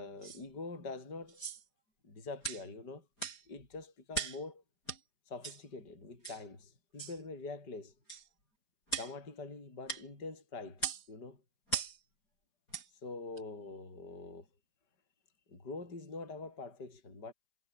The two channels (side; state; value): right; late; 4.9 ms